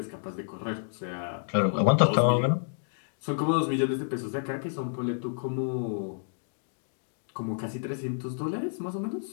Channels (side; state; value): right; silent; digital silence